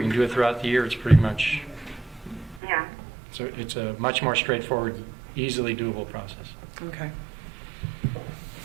can do it throughout the year. It's pretty much, Yeah. so it's a much more straightforward, easily doable process. Okay.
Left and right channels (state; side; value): drops out; left; at 2.6 s